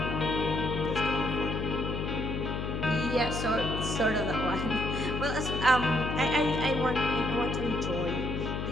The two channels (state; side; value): noise; left; hum, 3 dB below the sound